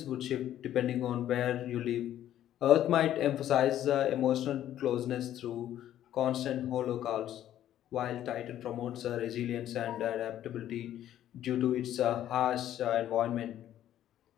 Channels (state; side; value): quieter; right; 11.8 dB